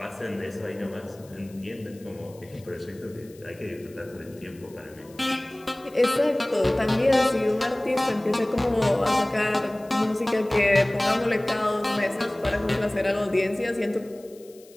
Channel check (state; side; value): noise; left; hiss, 26 dB below the sound